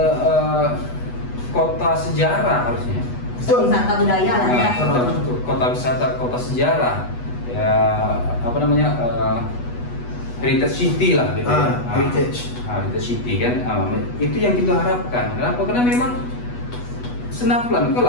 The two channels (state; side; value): late; right; 8.2 ms